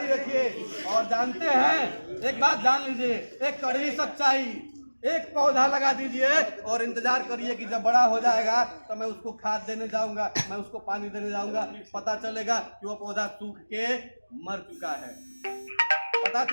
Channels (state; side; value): inverted; both; correlation -1.00